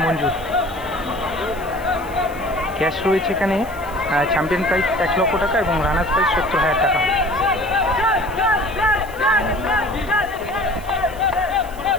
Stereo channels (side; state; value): right; noise; hiss, 21 dB below the sound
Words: মঞ্জুর। ক্যাশ রয়েছে এখানে, চ্যাম্পিয়ন প্রাইস 1 লক্ষ টাকা এবং রানার্স প্রাইস 70,000 টাকা।